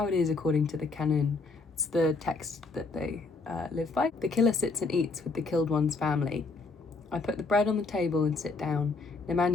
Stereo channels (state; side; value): quieter; right; 3.9 dB